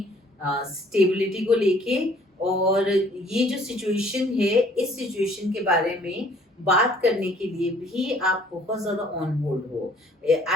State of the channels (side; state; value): both; normal; correlation 0.58